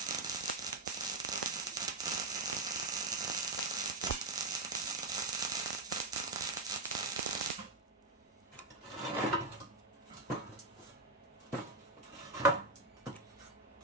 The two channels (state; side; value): quieter; left; 3.1 dB